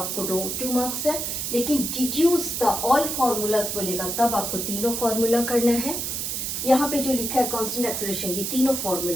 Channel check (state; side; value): noise; right; hiss, 2 dB below the sound